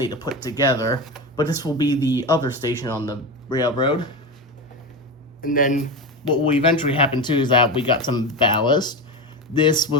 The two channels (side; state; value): both; normal; correlation 0.20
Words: to put together, but this will be the other station on the railroad. And then what will eventually happen too is that we got some ballast. This